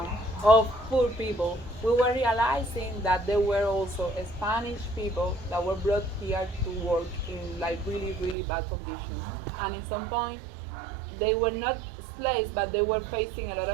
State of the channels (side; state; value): left; drops out; at 8.3 s